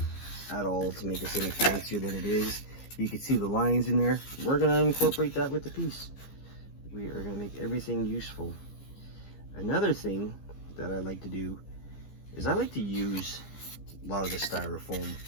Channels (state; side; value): late; right; 15 ms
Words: at all to make this any fancier than it is. You can see the lines in there. We're going to incorporate that with the piece. We are going to make everything useful. Another thing that I like to do is I like to use a lot of the styrofoam,